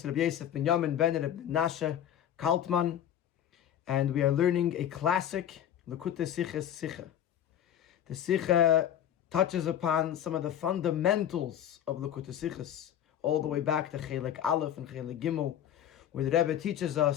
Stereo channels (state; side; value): quieter; right; 10.3 dB